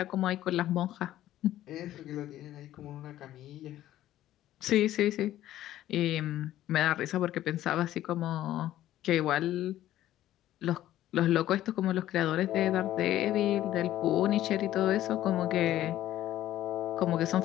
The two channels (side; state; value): right; quieter; 13.5 dB